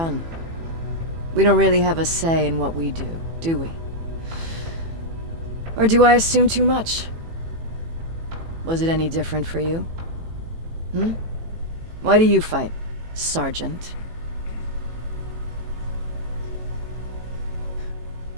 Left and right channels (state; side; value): late; left; 18 ms